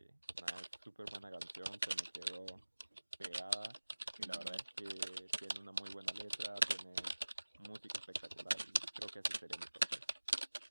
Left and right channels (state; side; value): inverted; both; correlation -1.00